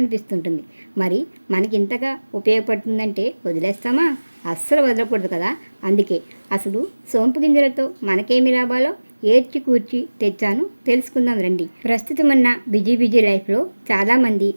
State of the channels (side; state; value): both; inverted; correlation -1.00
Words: మరి మనకి ఇంతగా ఉపయోగపడుతుందంటే వదిలేస్తామా? అస్సలు వదలకూడదు కదా. అందుకే అసలు సోంపు గింజలతో మనకేమి లాభాలో ఏర్చి కూర్చి తెచ్చాను, తెలుసుకుందాం రండి. ప్రస్తుతం ఉన్న బిజీ లైఫ్లో చాలామంది